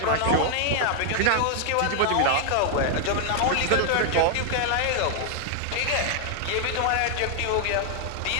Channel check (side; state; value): both; different; correlation 0.00